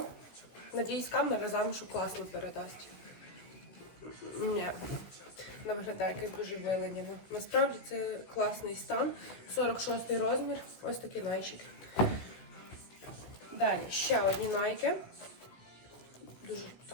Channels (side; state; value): right; late; 16 ms